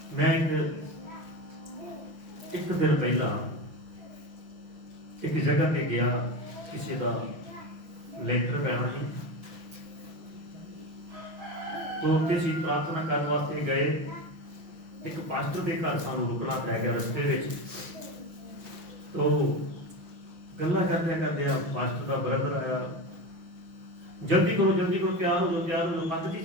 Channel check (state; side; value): late; left; 6.1 ms